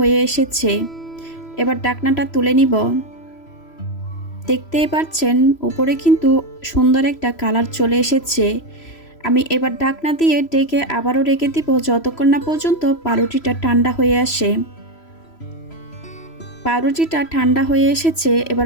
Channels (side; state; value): right; late; 3.0 ms